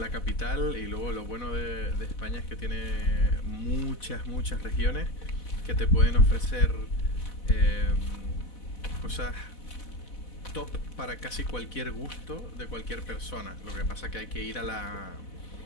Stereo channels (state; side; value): late; right; 4.1 ms